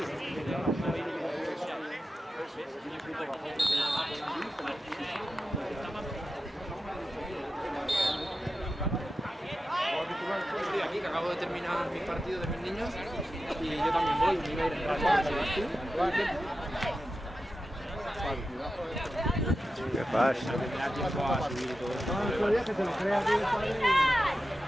Estoy aquí, que acabo de terminar mis partidos de mis niños y yo también voy, me iba a ir en rato. ¿Qué pasa?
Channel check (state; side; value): normal; both; correlation 0.92